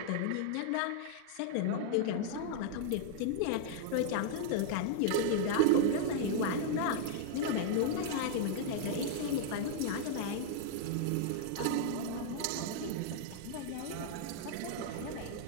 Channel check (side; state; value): both; different; correlation -0.01